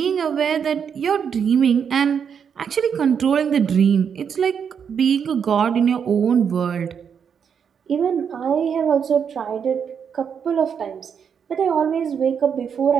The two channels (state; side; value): quieter; left; 7.3 dB